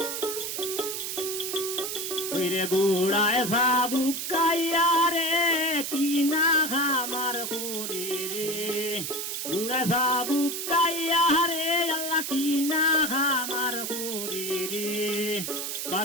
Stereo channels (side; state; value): right; noise; hiss, 4 dB below the sound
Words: রে গুড়ায় সাবুকাইয়া রে কিনা খামার করে রে গুড়ায় সাবুকাইয়া রে আল্লাহ কিনা খামার করে রে